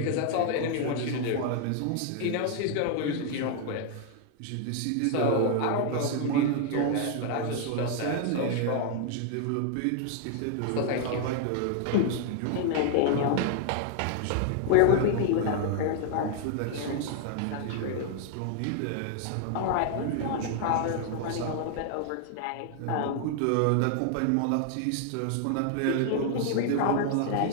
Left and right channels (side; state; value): both; different; correlation 0.00